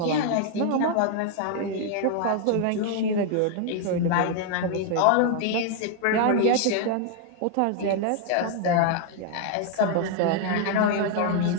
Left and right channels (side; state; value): both; different; correlation 0.00